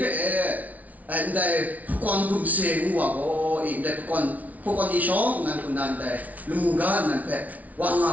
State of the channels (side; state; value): left; late; 0.072 ms